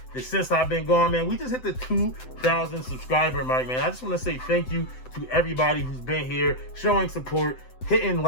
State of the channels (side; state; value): right; late; 7.8 ms